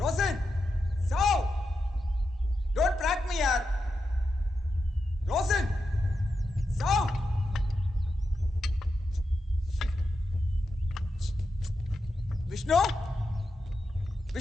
റോസൻ, സൗ. Don't prank me, yaar. Rosen, സൗ. വിഷ്ണു,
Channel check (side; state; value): both; normal; correlation 0.87